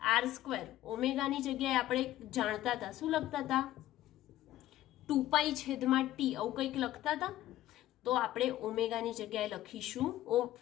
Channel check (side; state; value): right; quieter; 14.3 dB